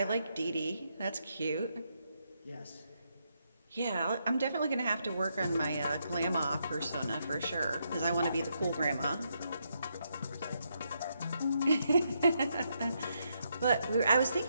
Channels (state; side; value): inverted; both; correlation -0.79